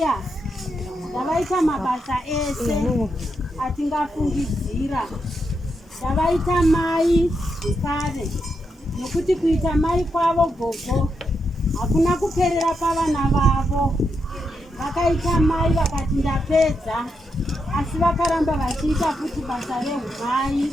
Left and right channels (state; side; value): normal; both; correlation 0.83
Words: ndavaita mabasa ese atingafungidzira, ndavaita mai zvekare nekuti kuita mai kwavo gogo hakuna kuperera pavana vavo. Vakaita mai vakati ndapedza, asi vakaramba vachiita futi basa rehumai